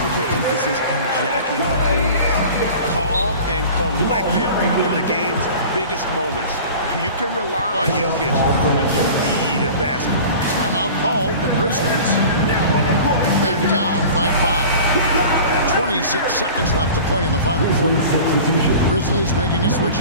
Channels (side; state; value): both; inverted; correlation -0.40